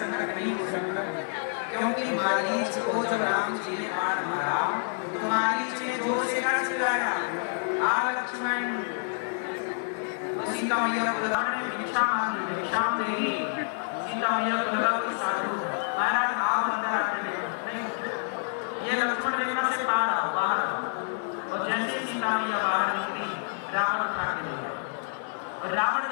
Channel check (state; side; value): silent; right; 59 dB below the other